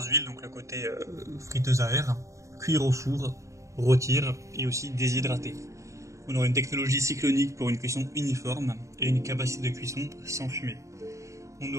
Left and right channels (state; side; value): late; left; 0.15 ms